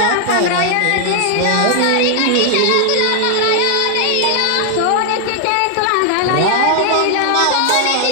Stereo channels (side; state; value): both; different; correlation 0.00